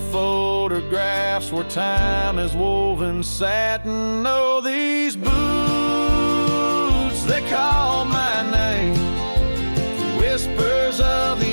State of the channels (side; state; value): both; inverted; correlation -1.00